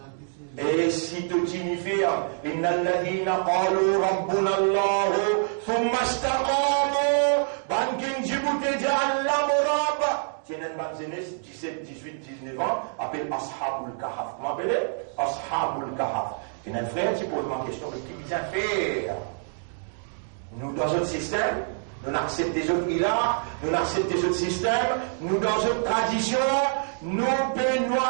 Et si tu signifies, inna alladhina qalu rabbuna Allah, thumma istaqamu, bankin Djibouti ja'allahu rabb. Tiens, un banzenes, 17, 18, 19 ans, appelle Ashabul Kahaf. Comment appelez? Ashabul Kahaf. Tiens, un frère qui pose ma question, mais qui vient faire? Nous, dans notre système, nous acceptons des autres ilahs, nous acceptons des autres systèmes, nous, dans notre tradition, nous pouvons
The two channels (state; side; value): silent; left; digital silence